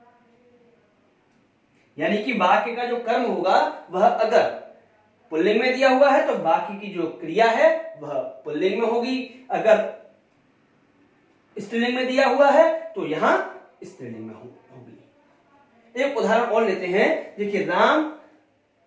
यानी कि वाक्य का जो कर्म होगा वह अगर पुल्लिंग में दिया हुआ है तो बाकी की जो क्रिया है वह पुल्लिंग में होगी, अगर स्त्रीलिंग में दिया हुआ है तो यहां स्त्रीलिंग में होगी। एक उदाहरण और लेते हैं, देखिए, राम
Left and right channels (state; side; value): identical; both; correlation 1.00